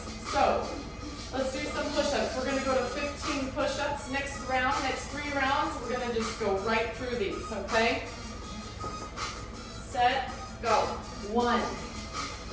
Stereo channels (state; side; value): identical; both; correlation 1.00